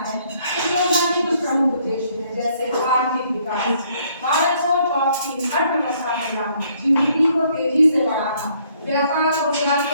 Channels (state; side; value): inverted; both; correlation -0.66